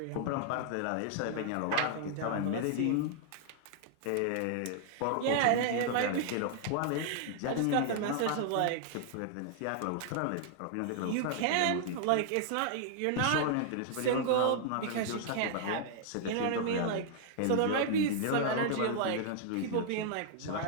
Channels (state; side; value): different; both; correlation 0.00